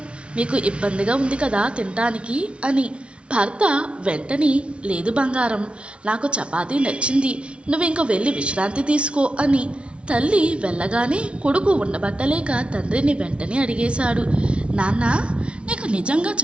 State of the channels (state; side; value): late; left; 0.059 ms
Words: మీకు ఇబ్బందిగా ఉంది కదా తినటానికి అని. భర్త వెంటనే, లేదు బంగారం, నాకు చపాతీ నచ్చింది, నువ్వింక వెళ్ళి విశ్రాంతి తీసుకో అని. తల్లి వెళ్ళగానే కొడుకు ఉండబట్టలేక తండ్రిని వెంటనే అడిగేశాడు, నాన్న, నీకు నిజంగా